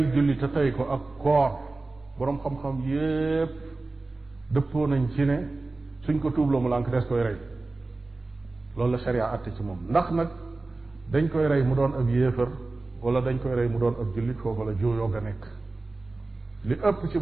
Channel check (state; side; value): quieter; left; 3.3 dB